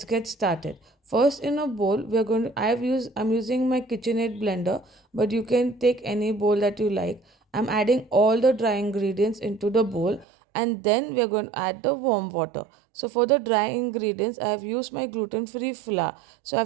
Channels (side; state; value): left; drops out; at 10.2 s